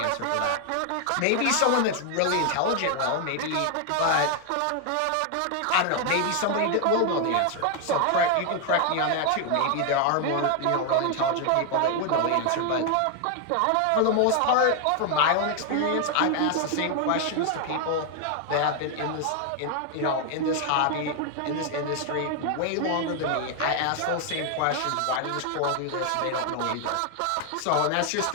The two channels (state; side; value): different; both; correlation 0.00